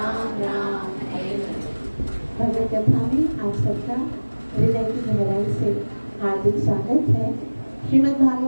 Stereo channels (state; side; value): inverted; both; correlation -1.00